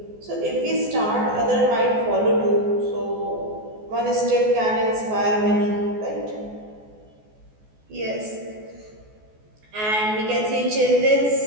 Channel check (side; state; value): left; late; 14 ms